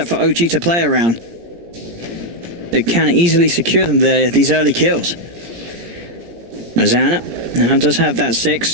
for OG to play around. It can easily secure them these early kills. Azana now does have that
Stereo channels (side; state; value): left; late; 17 ms